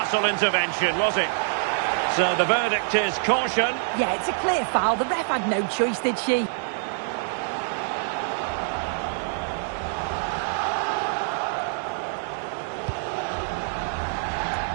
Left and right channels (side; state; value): left; silent; digital silence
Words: intervention, was it? So the verdict is caution. Yeah, it's a clear foul. The ref had no choice, did she?